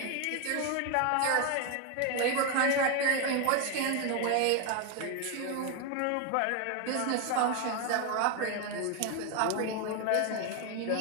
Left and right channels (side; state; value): both; different; correlation 0.01